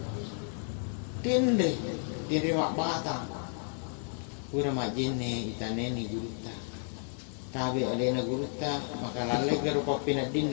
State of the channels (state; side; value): silent; right; 56 dB below the other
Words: Tindre mak batang pura majine itaneni Gurutta tabi alena Gurutta maka lalle garupa pinadin